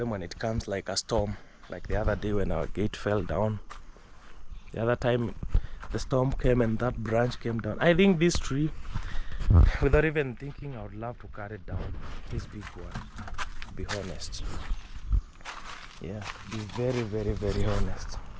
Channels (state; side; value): identical; both; correlation 1.00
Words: when it comes like a storm, like the other day when our gate fell down. The other time the storm came and that branch came down. I think this tree, without even thinking, I would love to cut it down. This big one, to be honest. Yeah, be very, very, very honest.